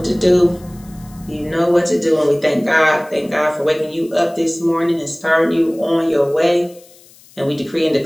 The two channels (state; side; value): noise; left; hiss, 26 dB below the sound